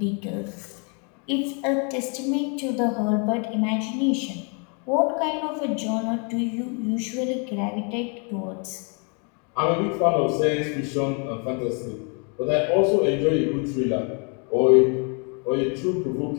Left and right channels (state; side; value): quieter; right; 37.1 dB